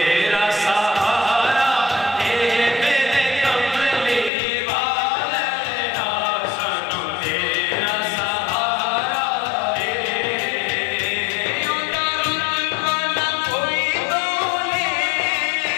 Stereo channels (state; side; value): drops out; right; at 4.3 s